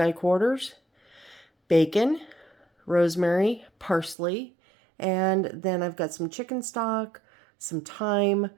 quarters, bacon, rosemary, parsley, and then I've got some chicken stock, some thyme,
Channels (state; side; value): drops out; left; at 4.2 s